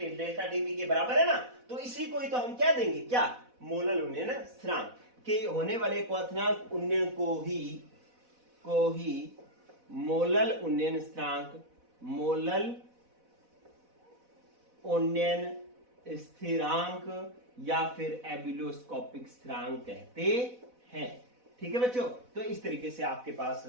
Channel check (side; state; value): left; late; 4.1 ms